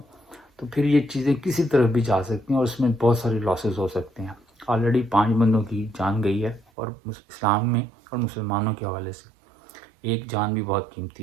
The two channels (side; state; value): left; drops out; at 6.7 s